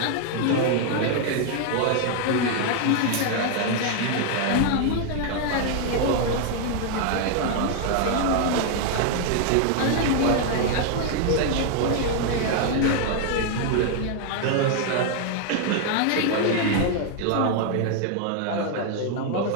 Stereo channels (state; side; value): different; both; correlation 0.00